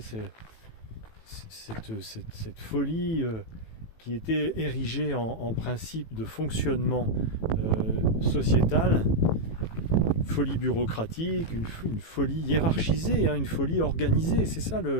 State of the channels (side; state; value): right; late; 18 ms